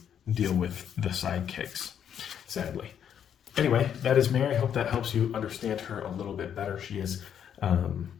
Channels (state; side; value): quieter; right; 8.8 dB